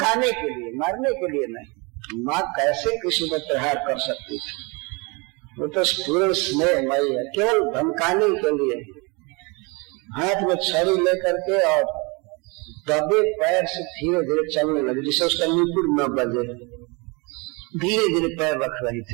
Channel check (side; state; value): left; quieter; 29.1 dB